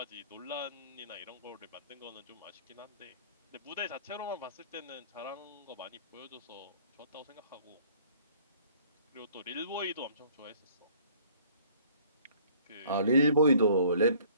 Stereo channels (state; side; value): inverted; both; correlation -0.54